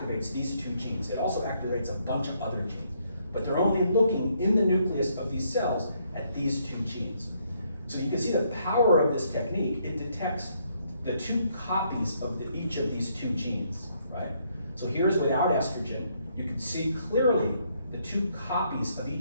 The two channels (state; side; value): inverted; both; correlation -0.72